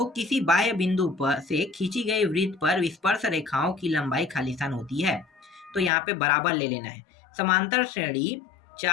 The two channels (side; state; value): right; drops out; at 5.9 s